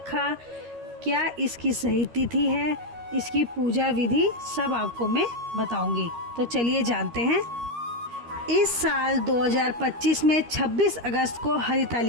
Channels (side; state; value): left; late; 13 ms